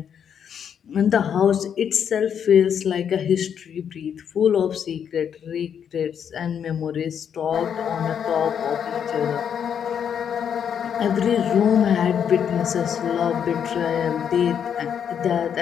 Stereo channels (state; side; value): quieter; right; 8.1 dB